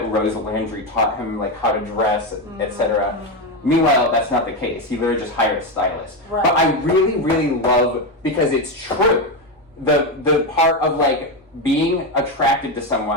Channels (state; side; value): normal; both; correlation 0.11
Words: Rose Landry taught him like how to dress, etc. Meanwhile, that's not the case. He literally just hired a stylist. Right. But I really, really love, because it's true, the part of like being attracted to